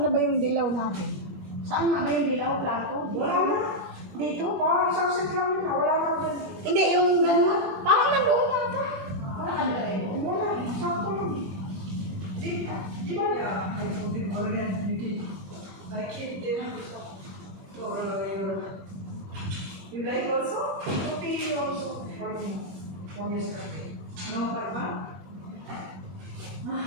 na ba yung dilaw natin? Saan na ba yung dilaw plato? Wala na. Dito? Parang isang set lang yun. Wala na dyan. Hindi, yung ganun. Parang nandoon nata. Wala ka na rin. Wala. Sakto yun. Di ba? Yeah. I put it already. I keep them. Or you like also? Coffee also. From yesterday. No, Karma?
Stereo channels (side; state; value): left; late; 21 ms